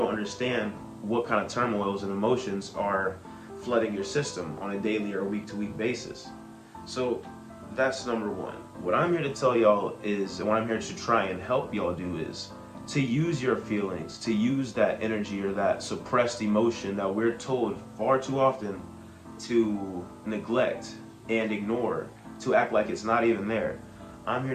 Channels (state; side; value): identical; both; correlation 1.00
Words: understand what kind of turmoils and emotions are flooding your system on a daily or week-to-week basis. So that's number one. What I'm here to tell y'all is, and what I'm here to try and help y'all do, is to use your feelings, to use that energy or that suppressed emotion that we're told far too often to neglect and ignore, to act like it's not even there. I'm here